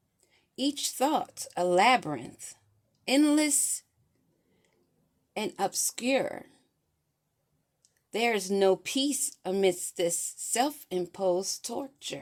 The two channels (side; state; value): both; identical; correlation 1.00